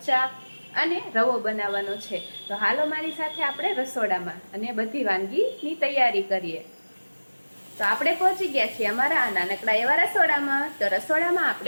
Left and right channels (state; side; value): inverted; both; correlation -1.00